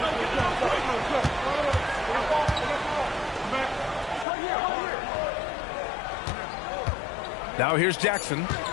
Now here's Jackson.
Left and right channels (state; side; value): drops out; right; at 4.2 s